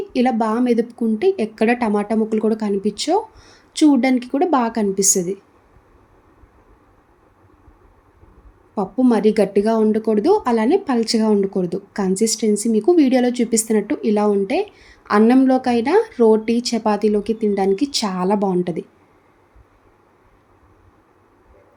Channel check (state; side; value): identical; both; correlation 1.00